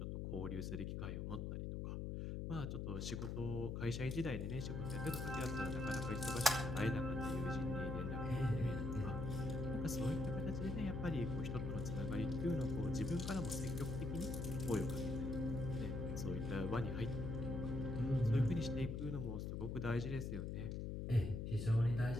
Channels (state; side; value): noise; left; hum, 3 dB below the sound